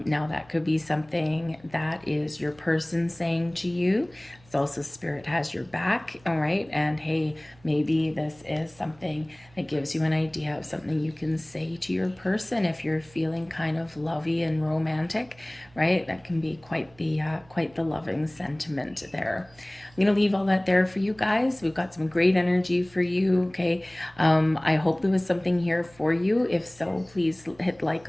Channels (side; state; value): right; noise; hum, 27 dB below the sound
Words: that could be something that is your person saying to you. It's also spirit has your back, all right? And hey, maybe this is something that gives you an idea of something you can say to your person if you're feeling kind of lovey and romantic, right? That can be quite the loving sentiment there. I'm going to leave all that there for you guys. We've got some great energy for you, okay? I hope there was something here for you. If so, please hit like